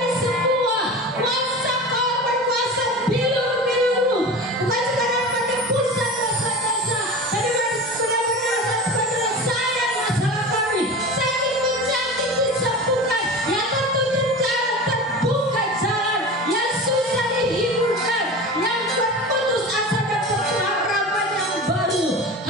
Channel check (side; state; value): both; normal; correlation 0.32